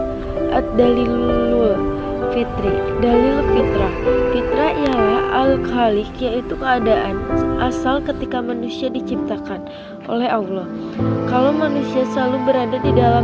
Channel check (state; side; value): identical; both; correlation 1.00